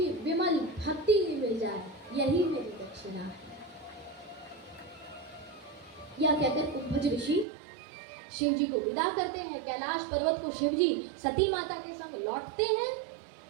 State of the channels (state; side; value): drops out; left; at 7.5 s